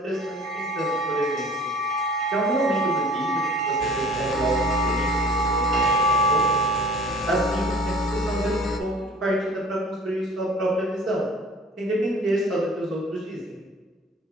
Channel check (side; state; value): both; normal; correlation 0.47